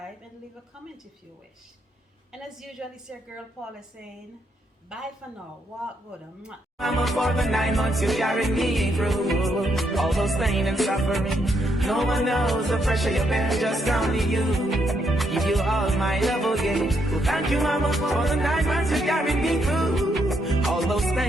and leave a comment if you wish. And as usual, it's your girl Paula saying bye for now. Walk good. I'm up for the 9 months you carried me through all those pain and suffering. No one knows the pressure you bear, just only you. Give you all my love again. Well, thank you, Mama, for the 9 months you carried me through all those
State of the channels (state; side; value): normal; both; correlation 0.76